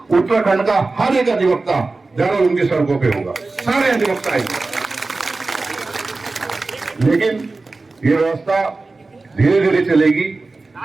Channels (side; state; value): left; quieter; 3.6 dB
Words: उत्तराखंड का हर एक अधिवक्ता जरूर उनकी सड़कों पे होगा, सारे अधिवक्ता आएंगे। लेकिन ये व्यवस्था धीरे धीरे चलेगी,